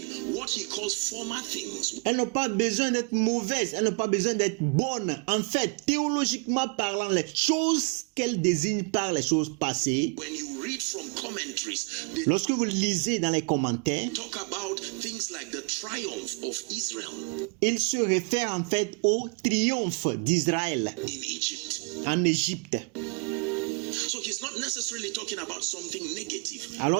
what he calls former things. Elles n'ont pas besoin d'être mauvaises, elles n'ont pas besoin d'être bonnes. En fait, théologiquement parlant, les choses qu'elles désignent par les choses passées, When you read from commentaries, they lorsque vous lisez dans les commentaires, talk about things like the triumph of Israel il se réfère en fait au triomphe d'Israël in Egypt. en Égypte. So he's not necessarily talking about something negative.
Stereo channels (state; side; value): quieter; left; 34.1 dB